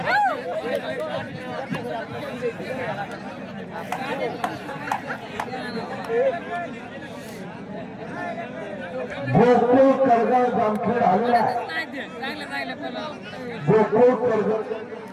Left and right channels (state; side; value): identical; both; correlation 1.00